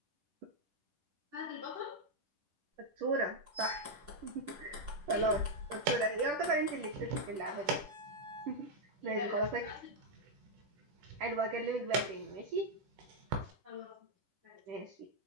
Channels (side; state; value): left; late; 10 ms